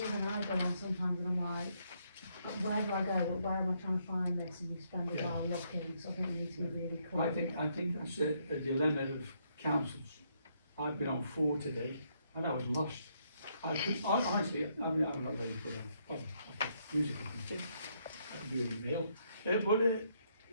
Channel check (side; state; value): both; inverted; correlation -0.73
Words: I go on sometimes and I'm like, where do I go, where am I trying to find this, and you spend a while looking, so I think we need to be really clear. I think that's a dilemma of councils. I've been on 4 today, and I was lost. Honestly, I mean, I'm not ready for that. Oh, okay, musical thing. I do an email. But